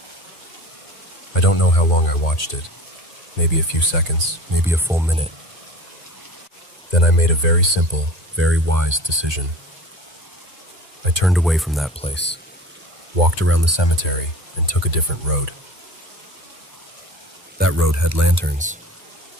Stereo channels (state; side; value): normal; both; correlation 0.39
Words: I don't know how long I watched it. Maybe a few seconds, maybe a full minute. Then I made a very simple, very wise decision. I turned away from that place, walked around the cemetery, and took a different road. That road had lanterns,